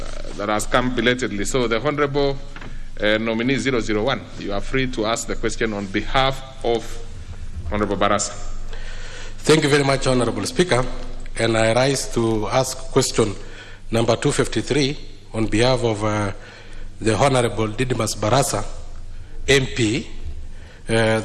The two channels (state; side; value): identical; both; correlation 1.00